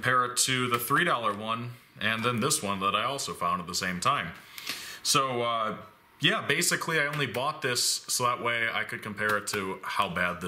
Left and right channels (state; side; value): identical; both; correlation 1.00